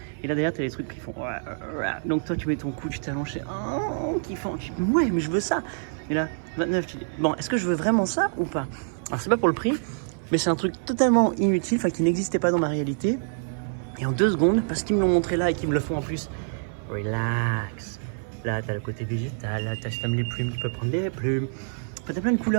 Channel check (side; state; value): left; silent; 57 dB below the other